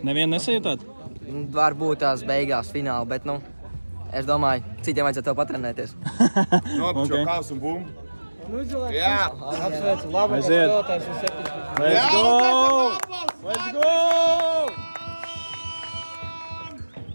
Nevienu nesajūtāt? Varbūt tās beigās fināli, bet, nu, es domāju, citiem vajadzētu tev patrenēties. Nopučo kaus un bumbu. Jā. Apsveicu, labāk Aiziet. spēlētājs un 7. Let's go! Let's go!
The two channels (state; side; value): inverted; both; correlation -1.00